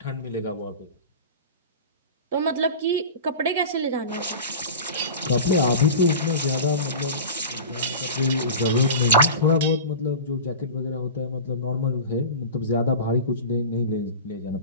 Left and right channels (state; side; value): inverted; both; correlation -0.32